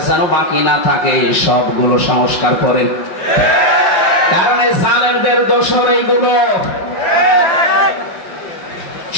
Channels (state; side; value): late; right; 5.4 ms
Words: যেন বাকি না থাকে, সবগুলো সংস্কার করেন। কারণ এই জালেমদের দোষর এইগুলো।